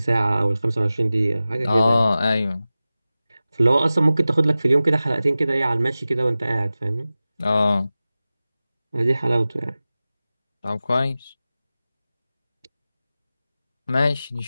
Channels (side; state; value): both; inverted; correlation -0.95